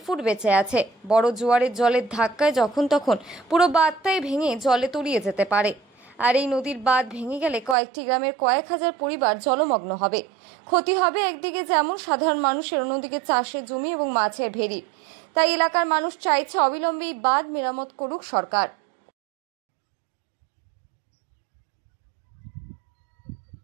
ফুট বেঁচে আছে। বড় জোয়ারের জলের ধাক্কায় যখন তখন পুরো বাঁধটাই ভেঙে জলে তলিয়ে যেতে পারে। আর এই নদীর বাঁধ ভেঙে গেলে কয়েকটি গ্রামের কয়েক হাজার পরিবার জলমগ্ন হবে। ক্ষতি হবে একদিকে যেমন সাধারণ মানুষের, অন্যদিকে চাষের জমি এবং মাছের ভেড়ির। তাই এলাকার মানুষ চাইছে অবিলম্বে এই বাঁধ মেরামত করুক সরকার।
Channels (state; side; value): drops out; left; at 7.8 s